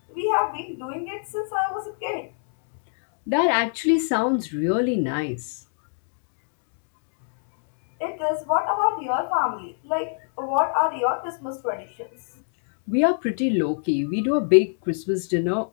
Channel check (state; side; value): silent; right; digital silence